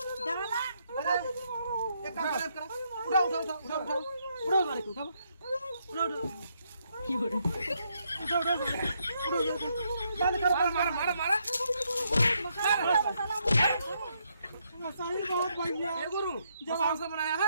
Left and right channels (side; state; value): both; inverted; correlation -0.76